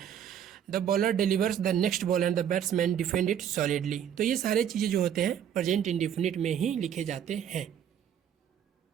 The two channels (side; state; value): left; quieter; 9.3 dB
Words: the bowler delivers the next ball and the batsman defend it solidly. तो ये सारे चीज़ें जो होते हैं प्रेजेंट इंडेफिनिट में ही लिखे जाते हैं।